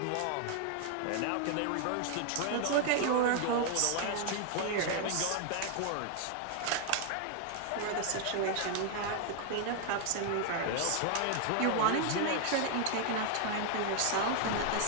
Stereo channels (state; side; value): different; both; correlation 0.00